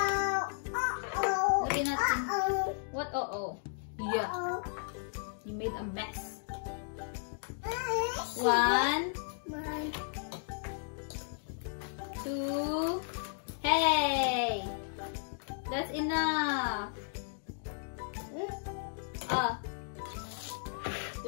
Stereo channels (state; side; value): silent; right; digital silence